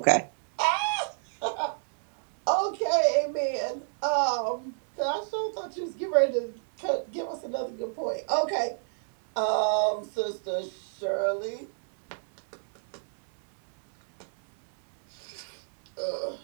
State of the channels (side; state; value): left; silent; 59 dB below the other